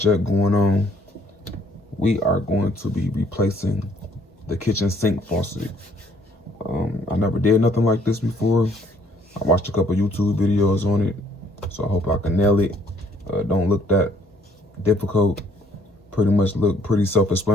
going on. We are going to be replacing the kitchen sink faucet. I never did nothing like this before. I watched a couple YouTube videos on it, so I hope I can nail it. Don't look that difficult. Pretty much look pretty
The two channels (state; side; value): normal; both; correlation 0.63